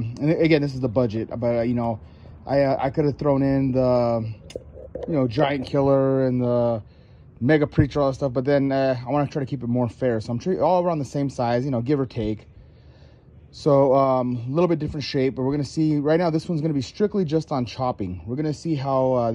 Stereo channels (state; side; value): identical; both; correlation 1.00